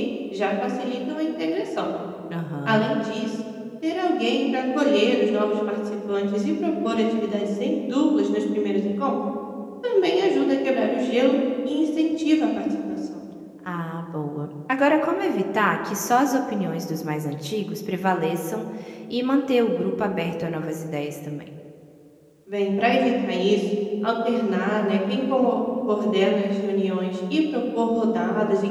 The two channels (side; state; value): both; identical; correlation 1.00